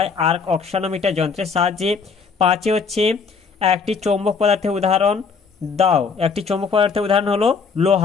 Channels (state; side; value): quieter; right; 5.3 dB